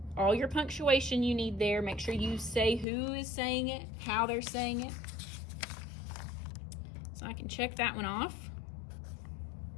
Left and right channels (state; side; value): drops out; right; at 2.9 s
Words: all your punctuation you need there. Make sure you say who is saying it, how they're saying it. So I can check that one off.